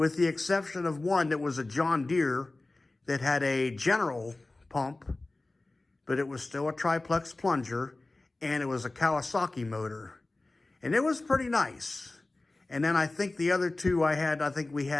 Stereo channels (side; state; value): right; quieter; 3.0 dB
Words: the exception of one that was a John Deere that had a general pump, but it was still a triplex plunger, and it was a Kawasaki motor, and it was pretty nice. And then I think the other 2 we